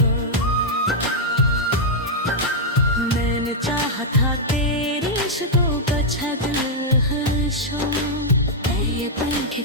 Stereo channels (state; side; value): normal; both; correlation -0.04